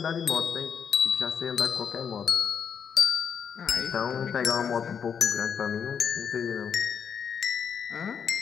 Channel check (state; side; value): quieter; right; 7.2 dB